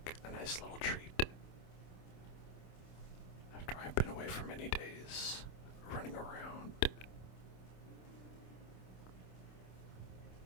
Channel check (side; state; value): right; late; 27 ms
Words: a nice little treat. After I've been away for many days, running around.